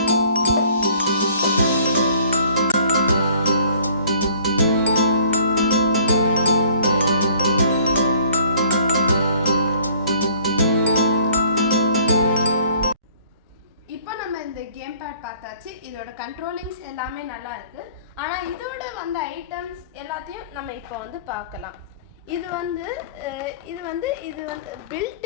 இப்போ நம்ம இந்த கேம் பேட் பார்த்தாச்சு. இதோட கண்ட்ரோலிங்ஸ் எல்லாமே நல்லா இருக்கு. ஆனால் இதோட வந்த ஐட்டம்ஸ் எல்லாத்தையும் நம்ம இப்போ வந்து பார்க்கலாம். இது வந்து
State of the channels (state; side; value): inverted; both; correlation -0.55